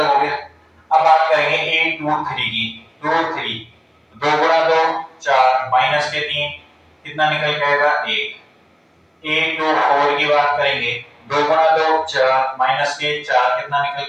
हो गया। अब बात करेंगे A23 की। 2 गुणा 2 4 माइनस के 3 कितना निकल के आएगा, 1। A24 की बात करेंगे 2 गुणा 2 4 माइनस के 4 कितना निकल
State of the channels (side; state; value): both; identical; correlation 1.00